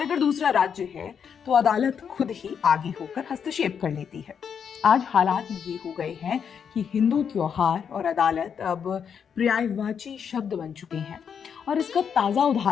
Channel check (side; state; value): right; quieter; 7.3 dB